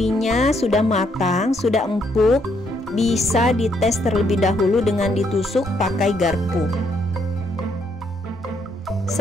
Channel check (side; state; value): both; normal; correlation 0.72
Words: sudah matang, sudah empuk. Bisa dites terlebih dahulu dengan ditusuk pakai garpu.